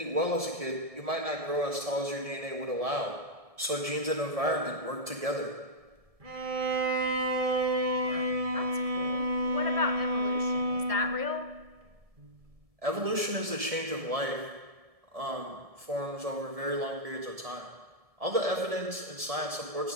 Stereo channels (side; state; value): left; late; 1.7 ms